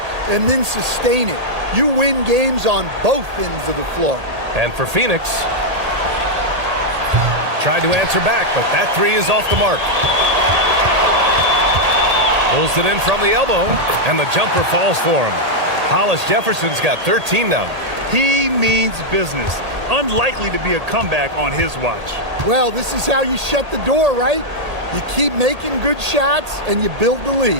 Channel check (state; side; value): late; left; 1.8 ms